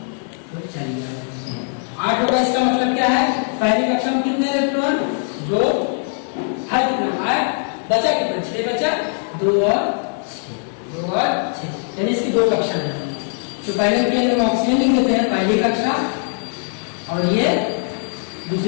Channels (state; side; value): silent; right; 55 dB below the other